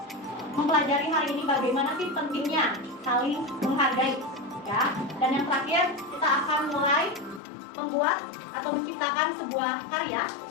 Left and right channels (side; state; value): right; drops out; at 7.4 s